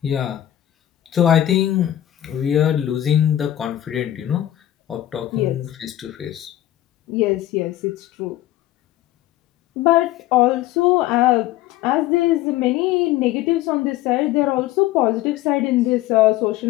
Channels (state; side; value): quieter; right; 13.6 dB